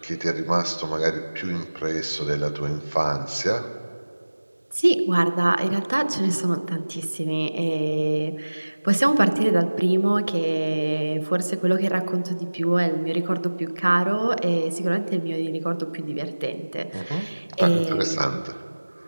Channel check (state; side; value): inverted; both; correlation -1.00